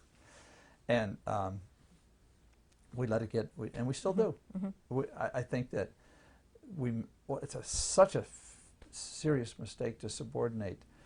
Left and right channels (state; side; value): identical; both; correlation 1.00